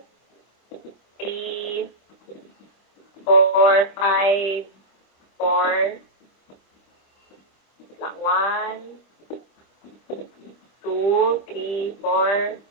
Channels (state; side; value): late; right; 25 ms